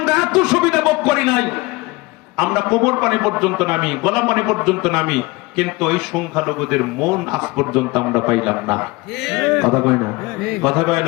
এত সুবিধা ভোগ করি নাই। আমরা কোমর পানি পর্যন্ত নামি, গলা পানি পর্যন্ত নামি, কিন্তু এই সংখ্যালঘুদের মন আজ পর্যন্ত আমরা পাইলাম না। কথা কয় না? কথা কয়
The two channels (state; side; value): quieter; right; 23.0 dB